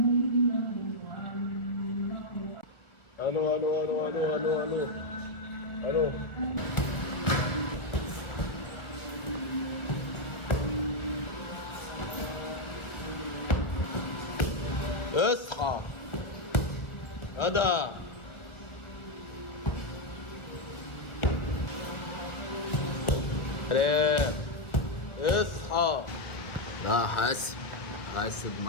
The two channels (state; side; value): late; right; 1.6 ms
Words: الو الو الو الو الو الو الو. اصحى غدا. سلام. اصحى. لا حاسب